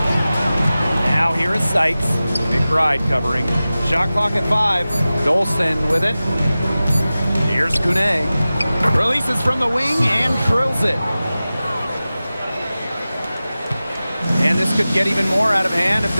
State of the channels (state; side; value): inverted; both; correlation -0.96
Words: Now here is Sykes. McBride covering. Shot clock at 5. Dolson with it. Here's Kune. Releases from the wing and drills it. And this could get even more out of hand if